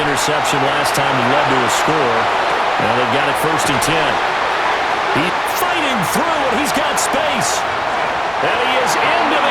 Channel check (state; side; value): noise; right; hum, 23 dB below the sound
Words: interception last time he led to a score. Now they've got it first and 10. He's fighting through, and he's got space. And he is into